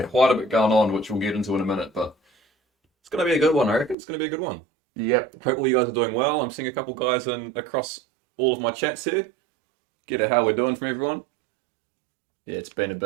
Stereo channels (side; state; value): left; drops out; at 4.0 s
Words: quite a bit going on, which we'll get into in a minute, but it's going to be a good one. I reckon it's going to be a good one. Yep. Hopefully, you guys are doing well. I'm seeing a couple guys across all of my chats here. Get at how we're doing from everyone. Yeah, it's been a